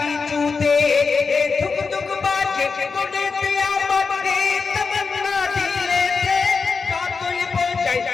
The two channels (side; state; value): right; quieter; 4.9 dB